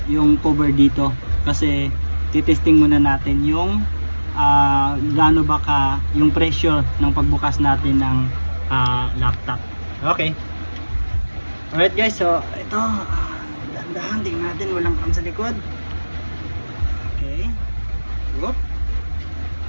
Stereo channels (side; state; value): both; inverted; correlation -1.00